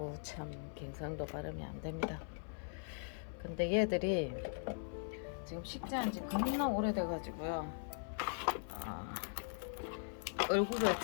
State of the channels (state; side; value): silent; right; 51 dB below the other